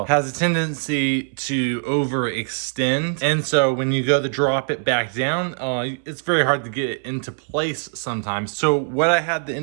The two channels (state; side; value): silent; left; 64 dB below the other